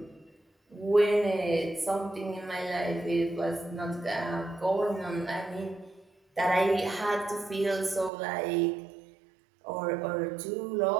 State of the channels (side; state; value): left; drops out; at 8.1 s